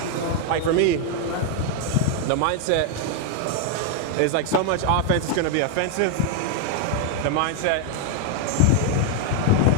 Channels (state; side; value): different; both; correlation 0.00